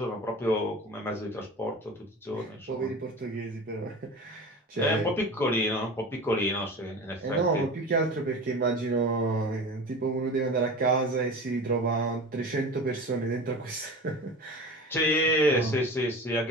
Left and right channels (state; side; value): normal; both; correlation 0.33